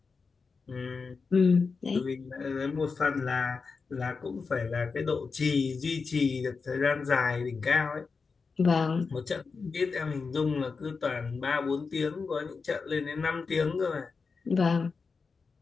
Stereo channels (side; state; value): right; quieter; 4.8 dB